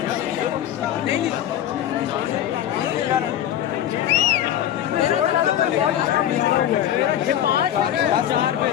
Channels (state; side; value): quieter; right; 11.2 dB